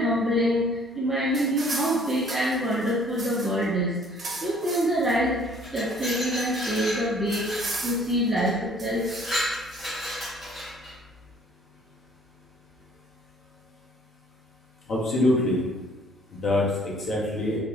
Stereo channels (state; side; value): normal; both; correlation 0.57